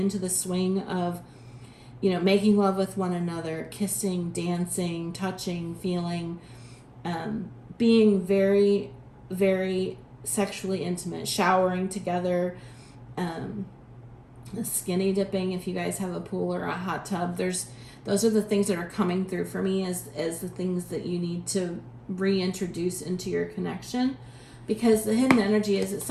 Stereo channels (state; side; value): identical; both; correlation 1.00